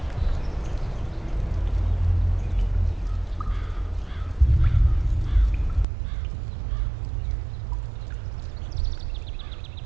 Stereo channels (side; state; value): left; drops out; at 5.9 s